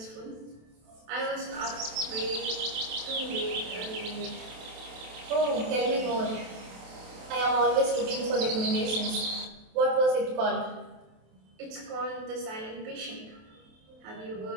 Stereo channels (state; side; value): late; left; 27 ms